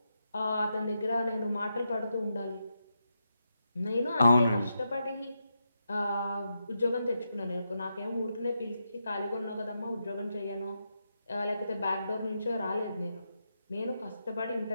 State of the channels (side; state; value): both; inverted; correlation -0.85